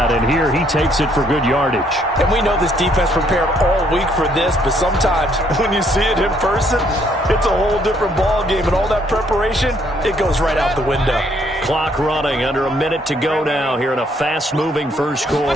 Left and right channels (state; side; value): normal; both; correlation 0.68